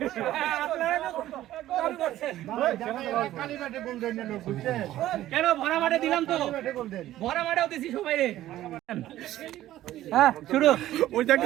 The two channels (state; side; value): quieter; left; 14.0 dB